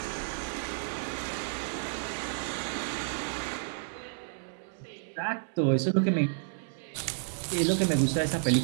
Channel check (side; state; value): left; silent; 57 dB below the other